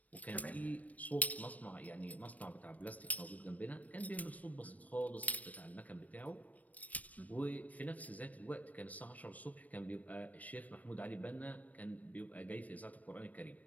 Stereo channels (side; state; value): right; late; 0.071 ms